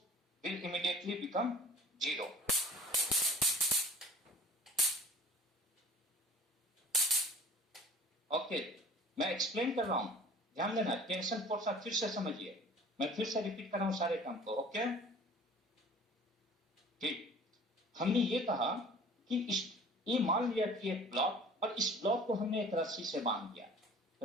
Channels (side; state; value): both; normal; correlation 0.47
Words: will immediately become zero. Okay, मैं एक्सप्लेन कर रहा हूं, ध्यान देना. टेंशन फोर्स आप फिर से समझिए, मैं फिर से रिपीट कर रहा हूं सारे काम को. ओके, ठीक. हमने ये कहा कि ये मान लिया कि एक ब्लॉक, और इस ब्लॉक को हमने एक रस्सी से बांध दिया.